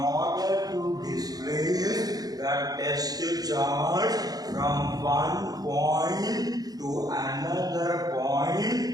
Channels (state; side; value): late; left; 0.18 ms